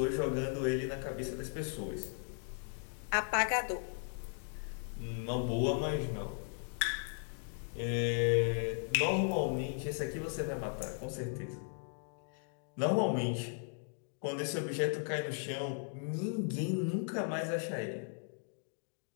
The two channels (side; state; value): right; silent; 53 dB below the other